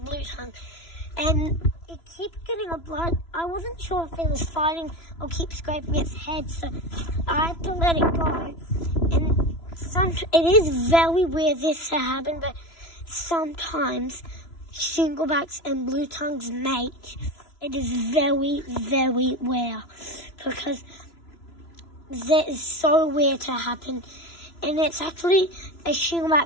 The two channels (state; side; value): late; right; 3.0 ms